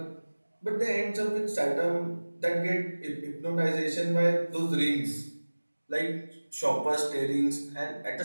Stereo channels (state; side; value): inverted; both; correlation -1.00